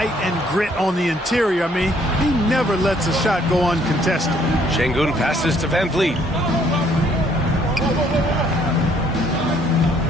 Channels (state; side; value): normal; both; correlation 0.64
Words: and grit on the interior. I mean, he never lets a shot go uncontested. Şengün passes to Van Vliet.